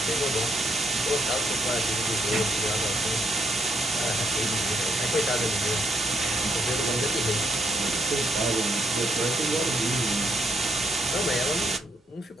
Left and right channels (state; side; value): normal; both; correlation 0.75